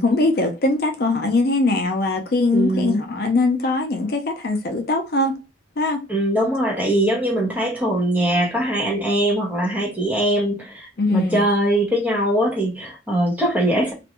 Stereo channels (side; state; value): both; normal; correlation 0.54